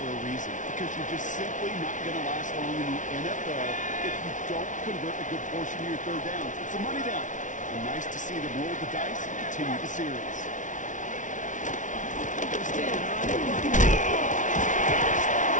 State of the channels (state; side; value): late; right; 0.37 ms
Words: for a reason, because you're just simply not going to last long in the NFL if you don't convert a good portion of your 3rd downs. It's a money down. And nice to see them roll the dice and continue the series. Standing on the one. The